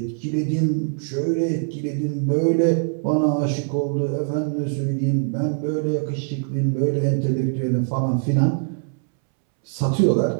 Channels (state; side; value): silent; left; 64 dB below the other